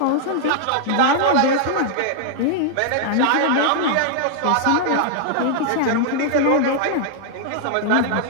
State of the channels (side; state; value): both; different; correlation -0.01